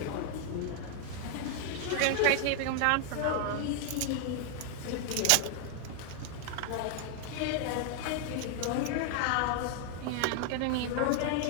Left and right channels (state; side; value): different; both; correlation 0.00